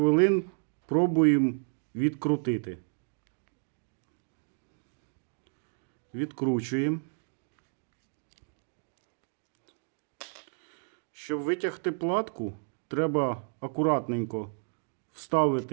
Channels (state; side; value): silent; left; 57 dB below the other